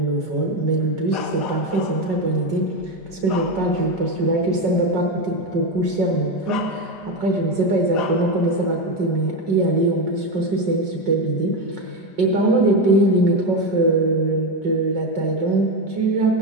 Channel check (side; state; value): left; late; 5.4 ms